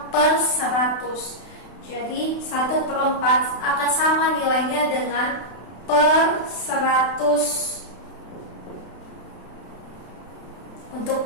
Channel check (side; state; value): right; late; 32 ms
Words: per 100. Jadi 1/4 akan sama nilainya dengan per 100 untuk